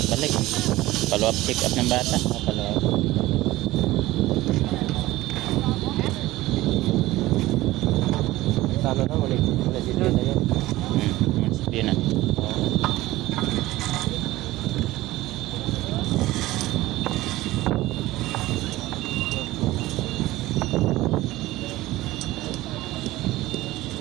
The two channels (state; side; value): quieter; left; 17.4 dB